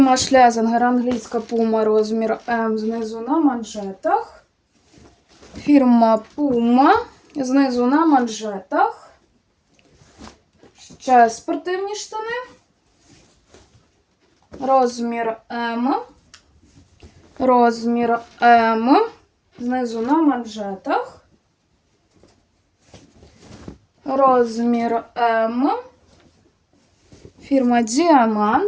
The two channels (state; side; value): identical; both; correlation 1.00